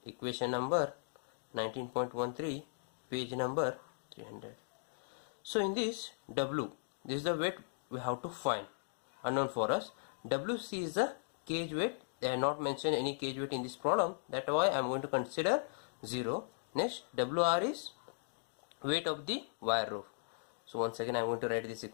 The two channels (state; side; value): silent; right; digital silence